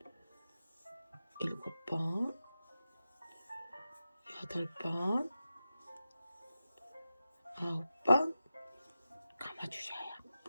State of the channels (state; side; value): inverted; both; correlation -0.92